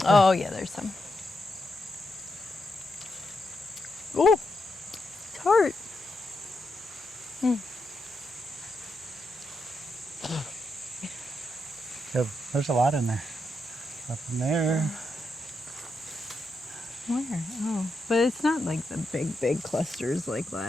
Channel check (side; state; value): both; normal; correlation 0.84